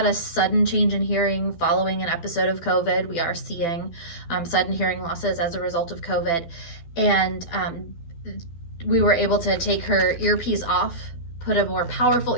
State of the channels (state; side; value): late; right; 12 ms